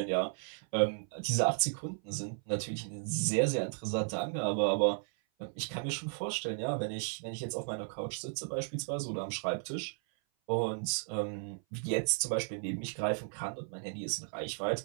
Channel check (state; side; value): silent; left; 55 dB below the other